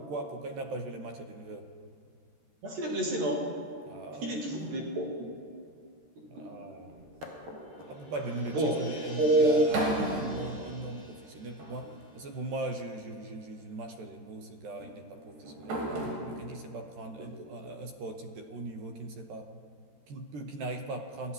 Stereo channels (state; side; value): late; left; 13 ms